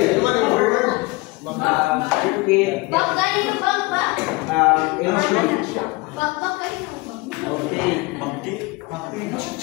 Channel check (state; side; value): quieter; right; 24.2 dB